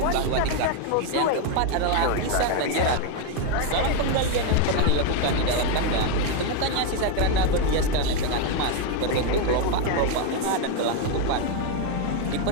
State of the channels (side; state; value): both; different; correlation 0.01